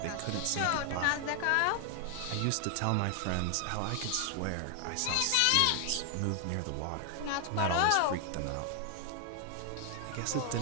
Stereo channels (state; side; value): different; both; correlation 0.00